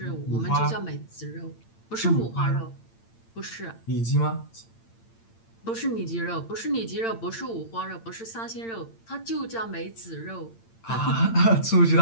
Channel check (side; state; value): right; late; 8.8 ms